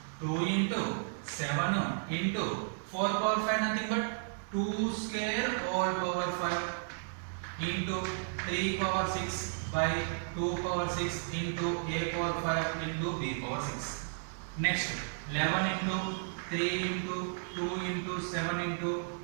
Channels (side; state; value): left; silent; digital silence